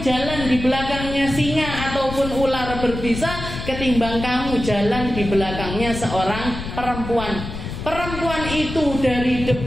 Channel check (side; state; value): left; noise; rumble, 8 dB below the sound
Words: jalan di belakangnya singa ataupun ular berbisa ketimbang kamu jalan di belakangnya seorang perempuan. Perempuan itu dari